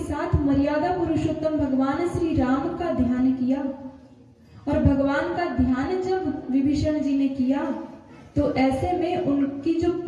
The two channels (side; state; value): both; identical; correlation 1.00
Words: साथ मर्यादा पुरुषोत्तम भगवान श्री राम का ध्यान किया। और भगवान का ध्यान जब विभीषण जी ने किया तो ऐसे में उनकी जो